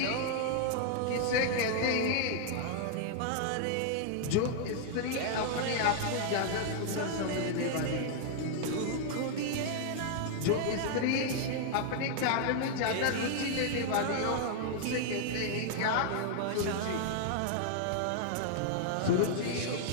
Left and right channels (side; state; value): both; different; correlation 0.00